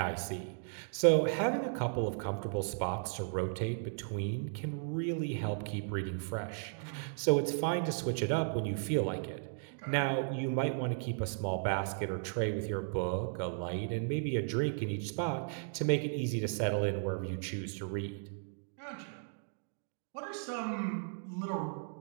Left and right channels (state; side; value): silent; left; digital silence